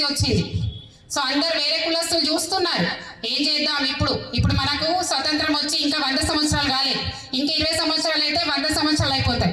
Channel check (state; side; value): identical; both; correlation 1.00